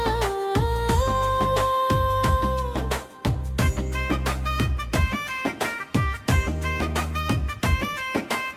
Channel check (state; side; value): identical; both; correlation 1.00